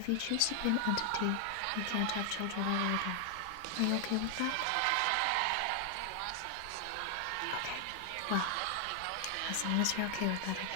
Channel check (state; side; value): different; both; correlation 0.00